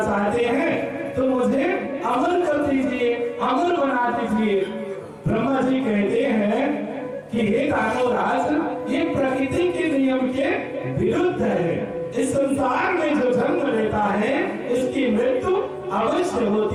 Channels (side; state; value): both; identical; correlation 1.00